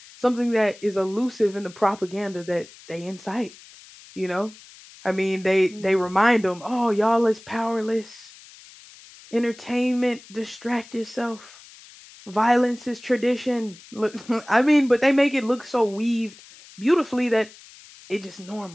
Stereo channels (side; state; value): left; noise; hiss, 21 dB below the sound